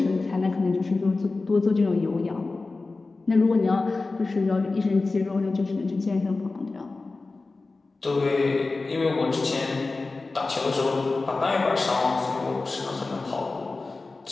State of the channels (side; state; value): right; quieter; 3.6 dB